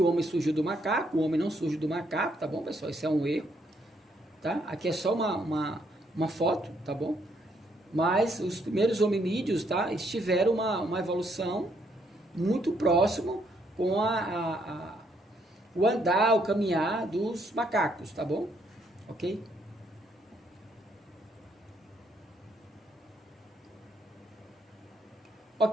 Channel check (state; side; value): normal; both; correlation 0.72